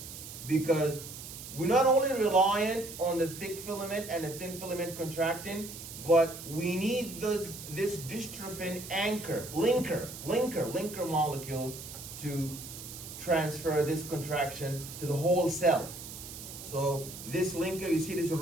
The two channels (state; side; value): noise; right; hiss, 12 dB below the sound